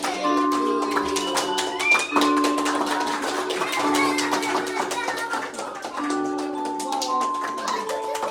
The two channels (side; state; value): both; identical; correlation 1.00